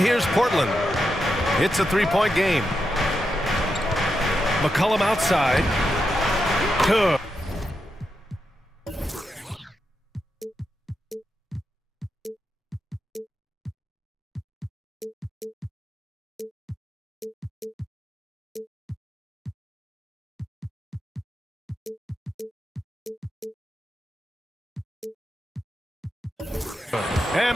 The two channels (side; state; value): both; normal; correlation 0.86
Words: Portland. It's a three-point game. McCollum outside. Good.